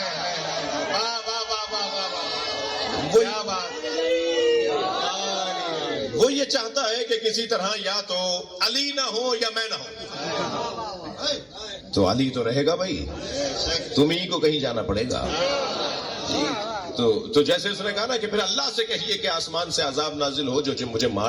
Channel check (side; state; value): both; identical; correlation 1.00